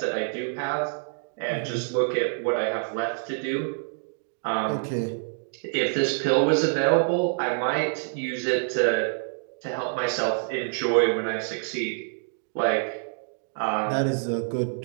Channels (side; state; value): left; silent; 60 dB below the other